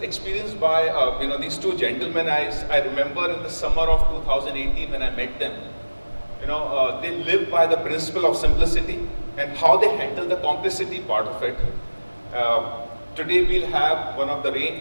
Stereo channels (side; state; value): both; inverted; correlation -1.00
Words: by these two gentlemen. I remember in the summer of 2018 when I met them. They live by the principle of simplicity and how they handle the complexity part of it. Today we'll have one of the